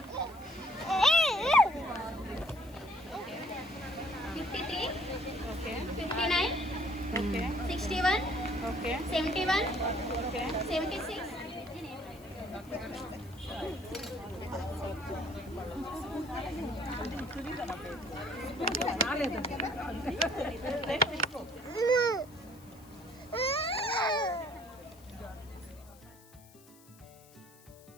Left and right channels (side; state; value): left; noise; hiss, 24 dB below the sound